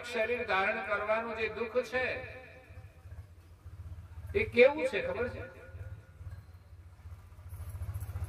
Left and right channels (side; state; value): both; identical; correlation 1.00